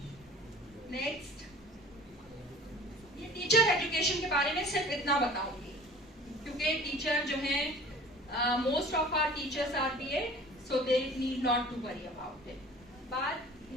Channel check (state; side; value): normal; both; correlation 0.44